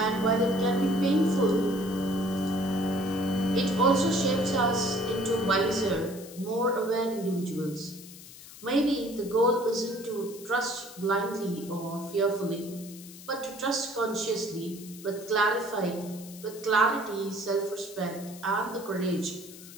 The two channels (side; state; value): left; noise; hiss, 17 dB below the sound